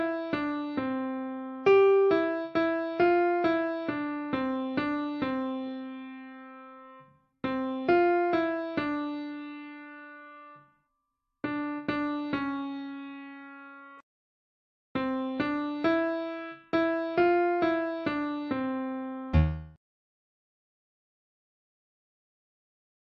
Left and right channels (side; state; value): both; identical; correlation 1.00